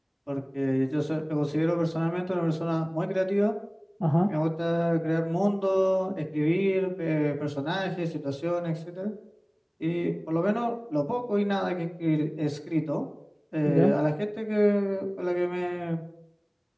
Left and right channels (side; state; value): both; identical; correlation 1.00